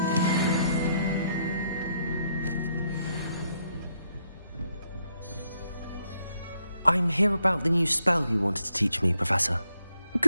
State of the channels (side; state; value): both; inverted; correlation -0.76